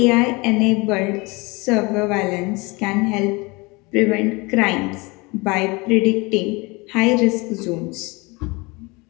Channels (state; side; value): quieter; right; 25.8 dB